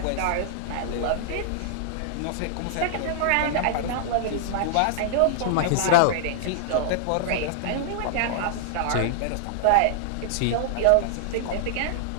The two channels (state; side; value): different; both; correlation -0.01